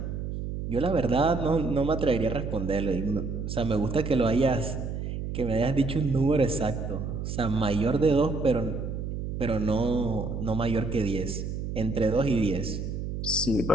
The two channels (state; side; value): noise; right; hum, 5 dB below the sound